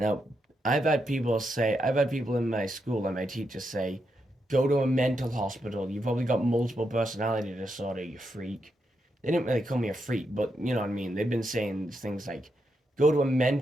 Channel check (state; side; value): normal; both; correlation 0.83